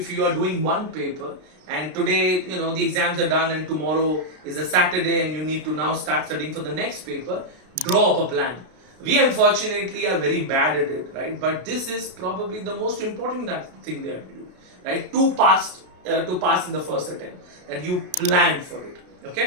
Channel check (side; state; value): left; late; 33 ms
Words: you are doing one paper and today the exams are done and tomorrow is a Saturday and you need to now start studying for the next paper, draw up a plan. We unfortunately are very bad at it, right? But this is probably the most important thing that we do, right? To pass in the first attempt, that you plan for it.